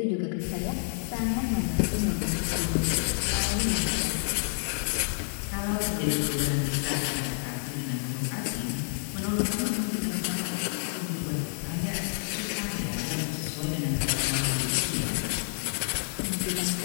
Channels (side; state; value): right; silent; 59 dB below the other